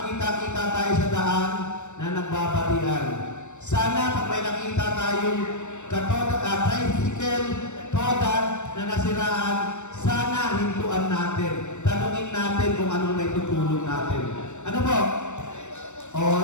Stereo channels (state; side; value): late; right; 0.84 ms